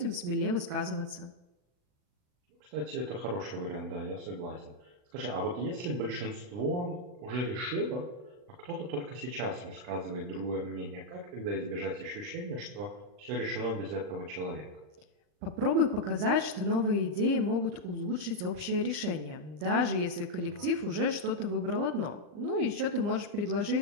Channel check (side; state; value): left; late; 39 ms